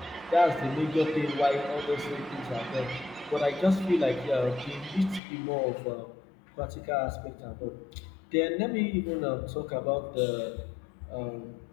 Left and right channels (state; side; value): drops out; right; at 5.2 s